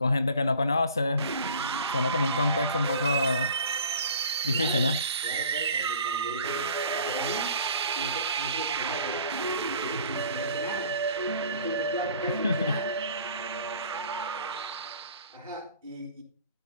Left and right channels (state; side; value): inverted; both; correlation -0.47